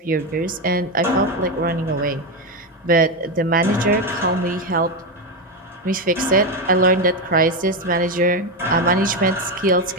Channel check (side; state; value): both; normal; correlation 0.11